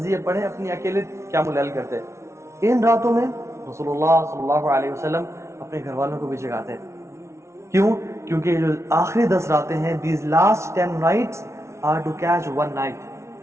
پڑھیں، اپنی اکیلے قیام اللیل کرتے۔ ان راتوں میں رسول اللہ صلی اللہ علیہ وسلم اپنے گھر والوں کو بھی جگاتے۔ کیوں؟ کیونکہ یہ جو آخری 10 راتیں ہیں، these last 10 nights are to catch one night،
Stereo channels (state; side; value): late; left; 0.13 ms